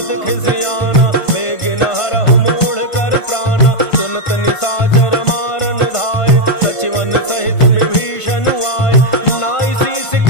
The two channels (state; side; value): late; right; 1.5 ms